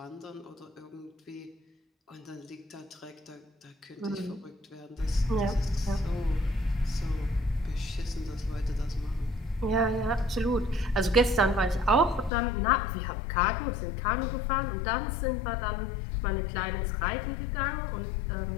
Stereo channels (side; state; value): right; drops out; at 12.3 s